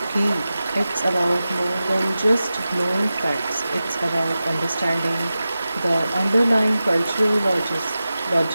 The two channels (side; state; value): both; inverted; correlation -0.94